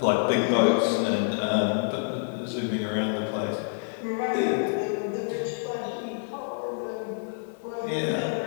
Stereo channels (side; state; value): right; silent; digital silence